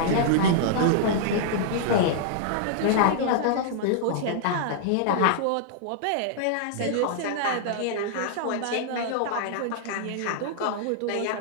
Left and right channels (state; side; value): different; both; correlation -0.01